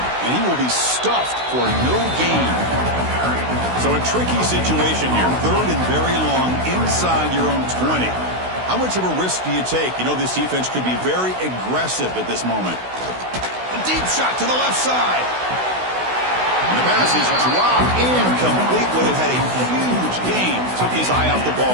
And he will be stuffed for no gain. So a tricky situation here. 3rd and very long inside your own 20. How much of a risk do you take? You know this defense could be very aggressive at this moment. A deep shot to the left side. And the pass is dropped incomplete. Would have had a huge gain. Took his eye off the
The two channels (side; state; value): left; late; 16 ms